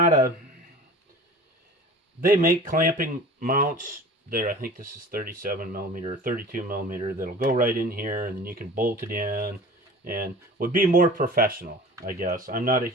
they make clamping mounts there. I think this is 37 millimeter, 32 millimeter. That'll go right in here, and then you can bolt it in, and would be more professional, I guess. I'm not a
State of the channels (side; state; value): both; normal; correlation 0.41